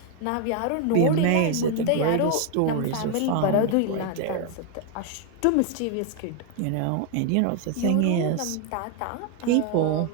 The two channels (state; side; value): different; both; correlation 0.01